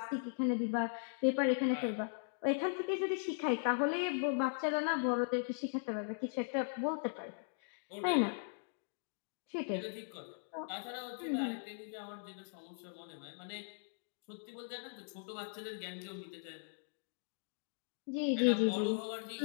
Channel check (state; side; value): silent; right; digital silence